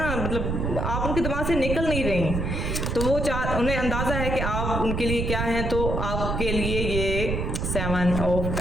मतलब आप उनके दिमाग से निकल नहीं रही, तो वो उन्हें अंदाज़ा है कि आप उनके लिए क्या हैं। तो आपके लिए ये 7 ऑफ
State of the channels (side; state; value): right; noise; rumble, 1 dB below the sound